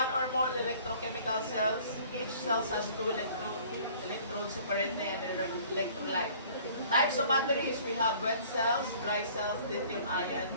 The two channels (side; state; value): both; inverted; correlation -0.52